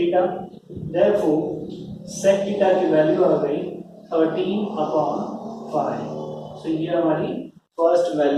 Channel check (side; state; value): both; identical; correlation 1.00